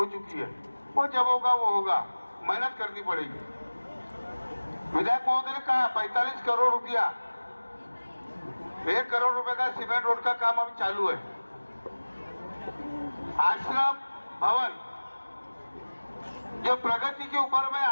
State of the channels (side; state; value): both; inverted; correlation -1.00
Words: चुकी है। वो जब होगा वो होगा, मेहनत करनी पड़ेगी। विधायक महोदय ने कहा 45 करोड़ रुपया, 1 करोड़ रुपए का सीमेंट रोड का काम अभी चालू है। आश्रम भवन जो प्रगति के ऊपर में